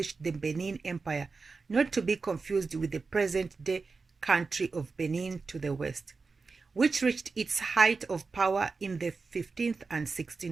the Benin Empire, not to be confused with the present-day country of Benin to the west, which reached its height of power in the 15th and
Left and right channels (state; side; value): quieter; left; 4.4 dB